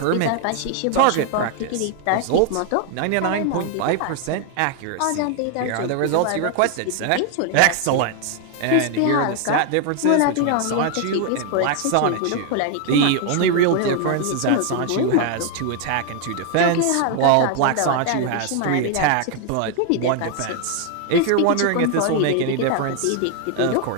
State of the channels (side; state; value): both; different; correlation 0.00